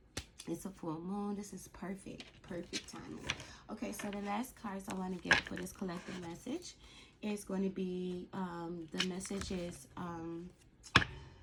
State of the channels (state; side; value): identical; both; correlation 1.00